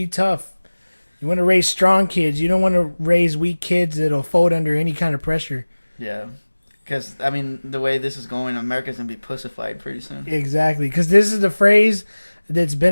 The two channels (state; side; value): inverted; both; correlation -1.00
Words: tough. You want to raise strong kids. You don't want to raise weak kids that'll fold under any kind of pressure. Yeah. Because, I mean, the way this is going, America's going to be pussified pretty soon. Exactly, because this is the phrase that's